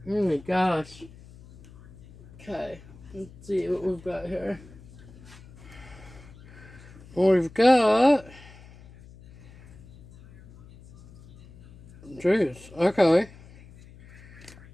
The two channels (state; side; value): noise; left; hum, 21 dB below the sound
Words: Oh my gosh. Okay. Let's see what we've got here. We've got... Jeez. Okay.